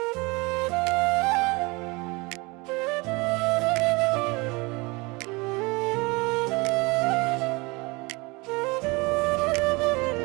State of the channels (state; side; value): quieter; left; 25.7 dB